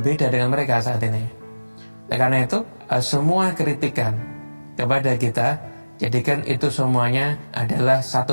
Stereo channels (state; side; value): inverted; both; correlation -1.00